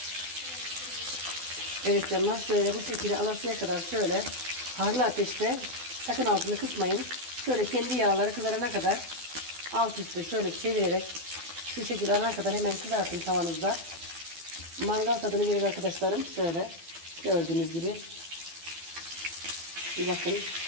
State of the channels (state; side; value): late; left; 12 ms